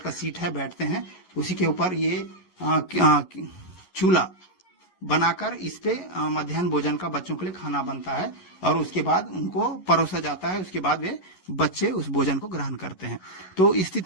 का सीट है, बैठते हैं, उसी के ऊपर ये चूल्हा बनाकर इस पे मध्याह्न भोजन का बच्चों के लिए खाना बनता है और उसके बाद उनको परोसा जाता है। उसके बाद वे बच्चे उस भोजन को ग्रहण करते हैं। तो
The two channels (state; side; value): late; right; 11 ms